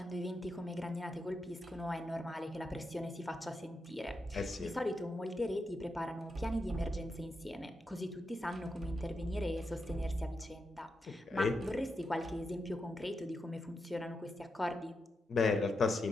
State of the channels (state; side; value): normal; both; correlation 0.86